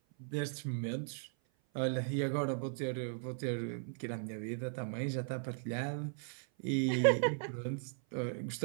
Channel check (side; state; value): left; silent; 53 dB below the other